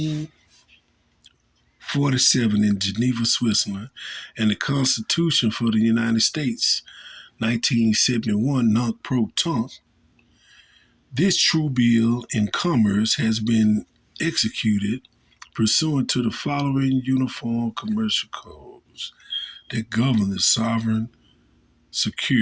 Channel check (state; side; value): identical; both; correlation 1.00